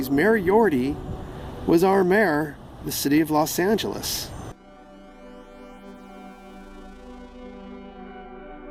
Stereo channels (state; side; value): identical; both; correlation 1.00